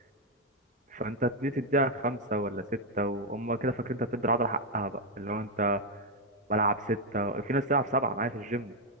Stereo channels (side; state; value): both; normal; correlation 0.02